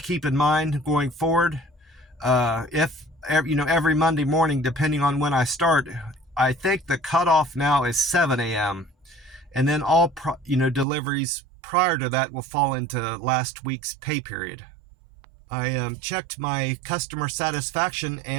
keep in mind going forward. If every Monday morning, depending on when I start, I think the cutoff now is 7 a.m. and then all deliveries prior to that will fall into last week's pay period. I checked my customer satisfaction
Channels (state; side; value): drops out; left; at 10.9 s